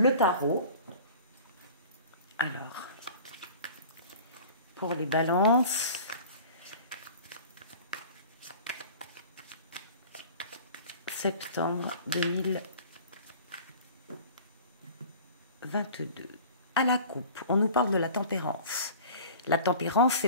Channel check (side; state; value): both; inverted; correlation -0.42